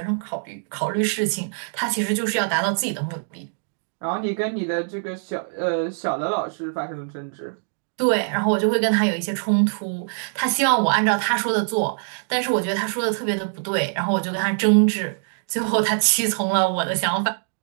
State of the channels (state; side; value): silent; left; digital silence